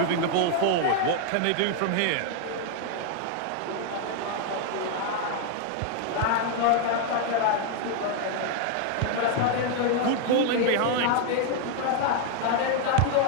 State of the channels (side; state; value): both; different; correlation 0.00